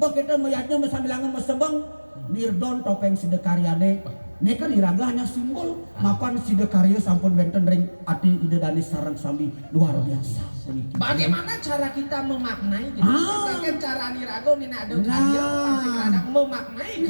meyatnya mesambilangan mesebeng Nirdon topeng sidekaryane ini kan iraga hanya simbol mapan sidekarya sampun wenten ring ati ide danis sarang sami luar biasa bagaimana cara kita memaknai gitu kan cara niraga ini ada karya pasti ada memaknai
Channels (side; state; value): both; inverted; correlation -1.00